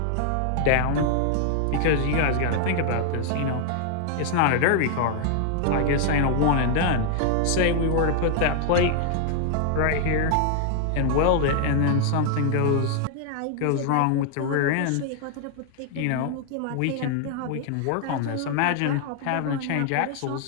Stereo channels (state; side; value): different; both; correlation 0.00